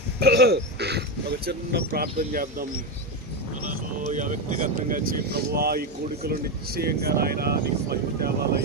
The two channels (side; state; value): both; normal; correlation 0.12